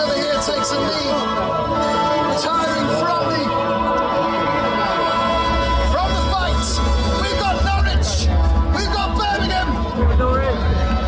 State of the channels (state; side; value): identical; both; correlation 1.00